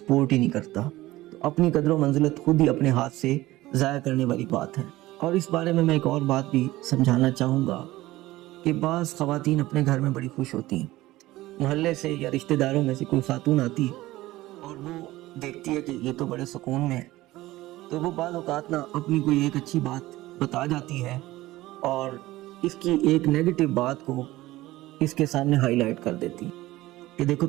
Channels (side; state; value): left; quieter; 17.5 dB